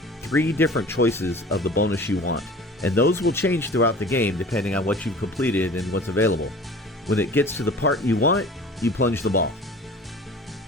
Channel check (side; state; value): both; normal; correlation 0.43